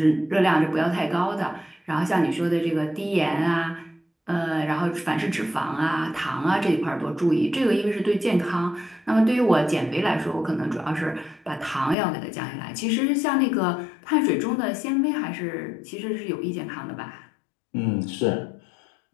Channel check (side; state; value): right; drops out; at 12.0 s